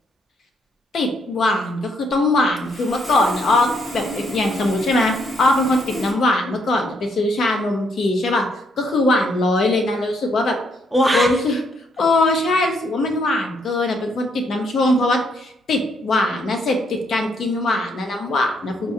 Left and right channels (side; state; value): both; normal; correlation 0.72